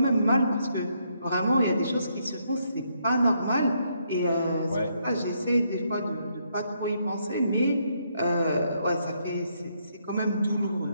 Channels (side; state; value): both; inverted; correlation -0.74